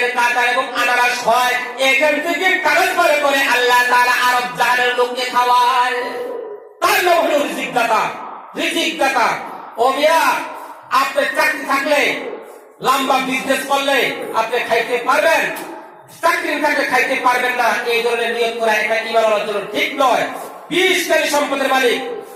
কাঁঠাল এবং আনারস হয়, এখান থেকে ট্রান্সফার করে আল্লাহ তাআলা আরব জাহানের লোককে খাওয়ায়। তার নাম হলো রিজিক দাতা। ও মিয়া, আপনি চাকরি থাকলে, লম্বা বিজনেস করলে আপনি খাইতে পারবেন, চাকরি থাকলে খাইতে পারবেন না, এই ধরনের নিয়ত করা এটা ঈমান আনার জন্য ঠিক নয়। 20 কোটি সম্পদের মালিক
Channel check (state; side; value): identical; both; correlation 1.00